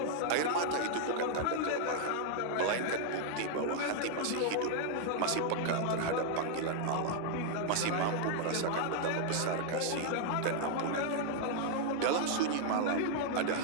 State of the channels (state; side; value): different; both; correlation 0.00